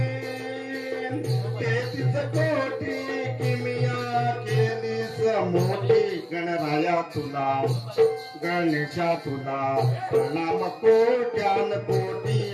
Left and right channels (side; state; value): both; identical; correlation 1.00